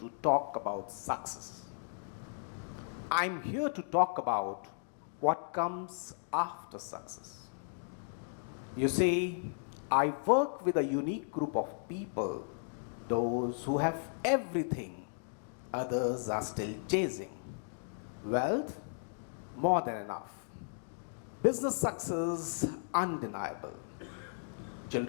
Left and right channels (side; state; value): right; silent; digital silence